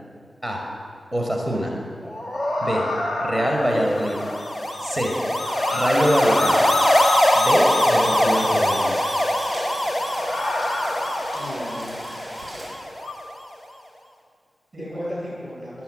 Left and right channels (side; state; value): both; normal; correlation 0.95